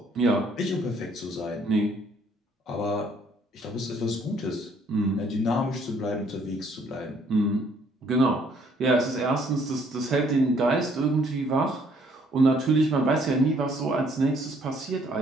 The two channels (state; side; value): normal; both; correlation 0.64